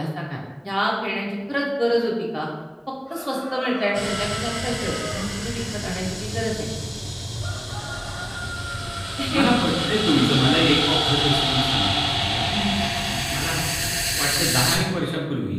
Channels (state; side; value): identical; both; correlation 1.00